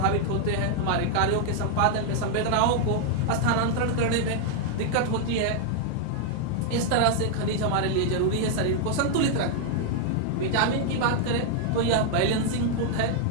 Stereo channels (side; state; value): both; different; correlation -0.01